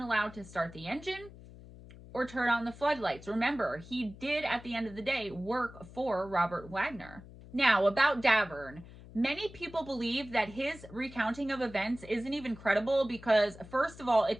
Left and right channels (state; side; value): noise; left; hum, 18 dB below the sound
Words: to start the engine or turn on the floodlights. Remember, he did, at the end of the day, work for Robert Wagner. Now, about Davern. Many people believe that his recounting of events isn't even credible because, first of all, it